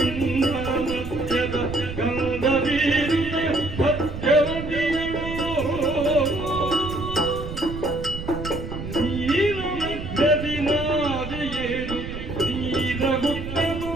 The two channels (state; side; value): noise; right; rumble, 8 dB below the sound